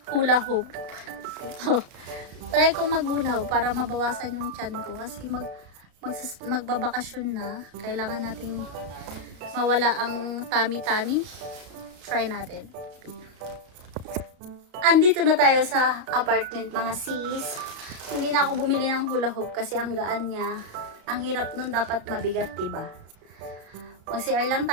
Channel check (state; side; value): late; left; 33 ms